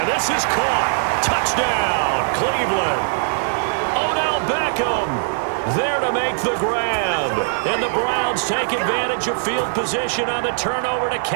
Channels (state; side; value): silent; left; digital silence